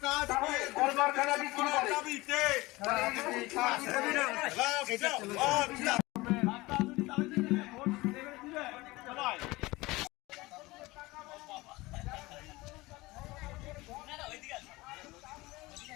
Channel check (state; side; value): quieter; right; 21.0 dB